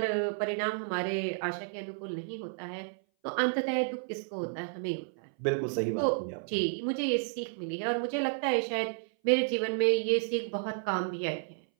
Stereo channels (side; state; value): left; silent; 57 dB below the other